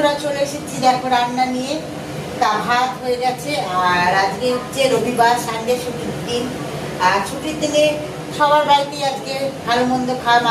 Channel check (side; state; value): both; identical; correlation 1.00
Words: চলে এসেছি দেখো রান্না নিয়ে। তা ভাত হয়ে গেছে, আর আজকে হচ্ছে রবিবার, সানডে ছুটির দিন। আর ছুটির দিনে সবার বাড়িতেই আজকে ভালো মন্দ খাওয়া,